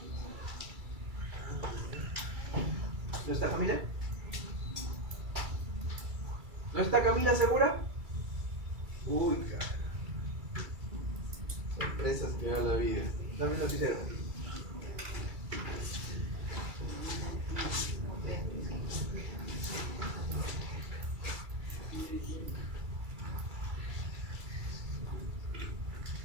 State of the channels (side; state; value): left; late; 2.3 ms